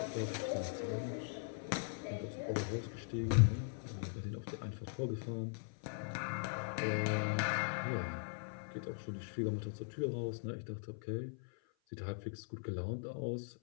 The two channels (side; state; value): right; silent; 51 dB below the other